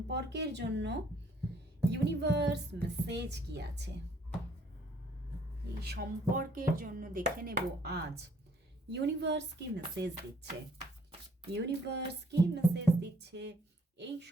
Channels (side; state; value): both; normal; correlation 0.63